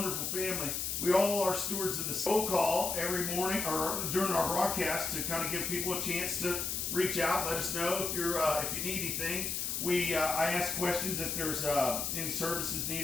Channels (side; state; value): left; noise; hiss, 1 dB below the sound